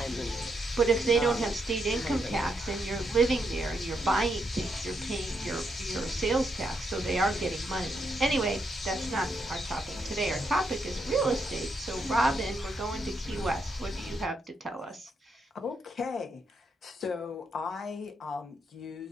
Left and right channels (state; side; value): normal; both; correlation 0.79